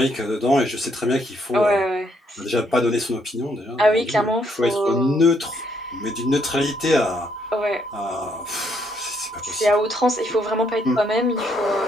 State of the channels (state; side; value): normal; both; correlation 0.72